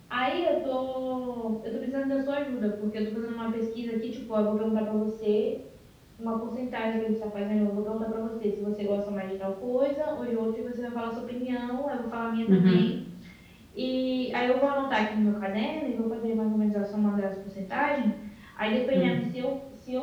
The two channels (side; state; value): both; identical; correlation 1.00